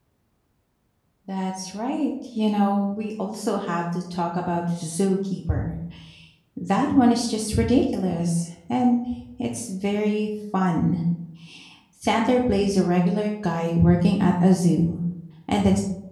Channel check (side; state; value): both; identical; correlation 1.00